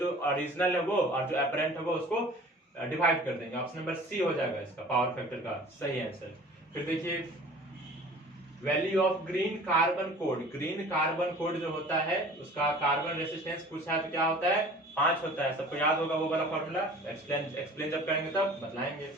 ओरिजिनल है वो और जो एपरेंट है वो उसको डिवाइड कर देंगे। ऑप्शन नंबर सी हो जाएगा इसका पावर फैक्टर का सही आंसर। फिर देखिए value of green carbon code जो होता है उसका कार्बन रेसिस्टेंस पूछा है तो क्या होता है? 5 होता है। सबको याद होगा वो वाला फॉर्मूला, एक्सप्लेन जब करेंगे तब बतलाएंगे।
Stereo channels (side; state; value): both; normal; correlation 0.45